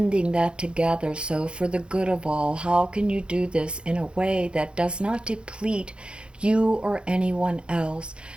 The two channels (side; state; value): left; late; 0.055 ms